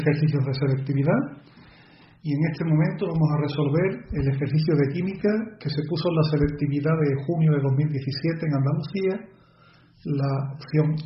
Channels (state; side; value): identical; both; correlation 1.00